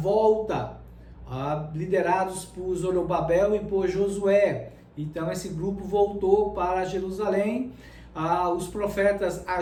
liderados por Zorobabel e por Josué. Então esse grupo voltou para Jerusalém. Os profetas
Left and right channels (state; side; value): identical; both; correlation 1.00